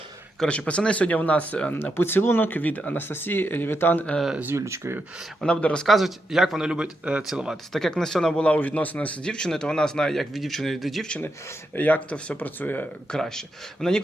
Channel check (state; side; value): normal; both; correlation 0.84